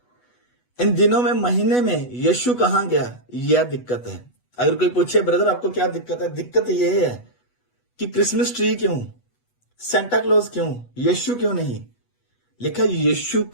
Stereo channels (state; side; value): late; right; 8.2 ms